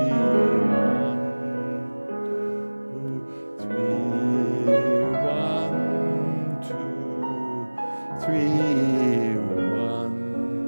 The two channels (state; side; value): inverted; both; correlation -1.00